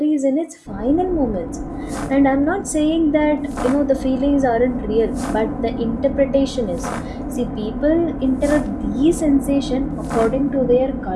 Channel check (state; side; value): identical; both; correlation 1.00